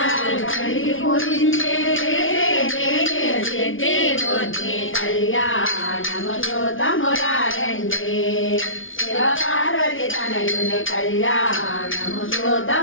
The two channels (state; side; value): late; right; 0.57 ms